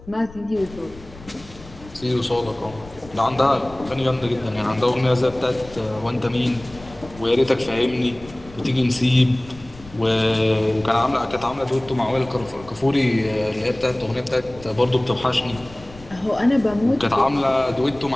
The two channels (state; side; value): noise; left; rumble, 19 dB below the sound